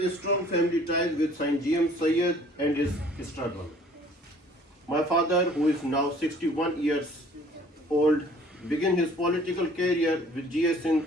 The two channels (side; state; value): both; normal; correlation 0.54